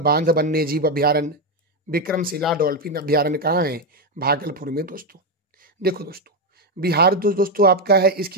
वन्यजीव अभ्यारण्य, विक्रमशिला डॉल्फिन अभ्यारण्य कहाँ है, भागलपुर में दोस्तों। देखो दोस्तों, बिहार दोस्तों आपका है,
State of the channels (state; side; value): normal; both; correlation 0.07